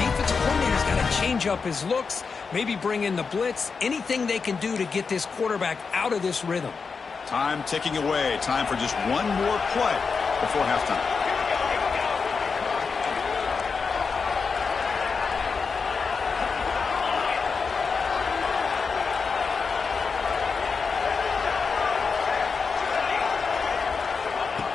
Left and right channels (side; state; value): right; quieter; 5.2 dB